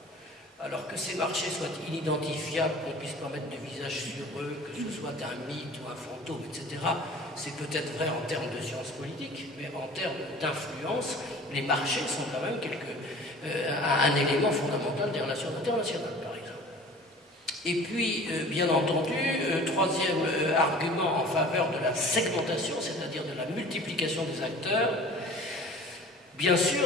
Alors que ces marchés soient inidentifiables, qu'on ne puisse pas mettre de visage sur eux, que ce soit un mythe ou un fantôme, etc., c'est peut-être vrai en termes de sciences politiques, mais en termes d'influence, les marchés sont quand même un élément fondamental des relations internationales, par exemple. Et puis, bien entendu, troisième argument en faveur de la segmentation, c'est-à-dire de la multiplication des acteurs, bien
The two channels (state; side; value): normal; both; correlation 0.44